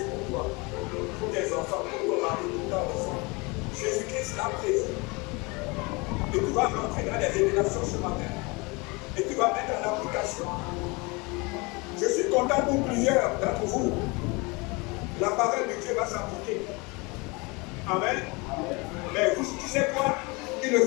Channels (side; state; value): right; quieter; 27.2 dB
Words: pour toi, pour tes enfants, pour ton mari, pour ta enfant. Jésus-Christ l'a prévu. Et tu vas rentrer dans les révélations ce matin. Et tu vas mettre en application. Je suis content pour plusieurs d'entre vous. La parole de Dieu va s'appliquer. Amen. Mais tu sais quoi? Il ne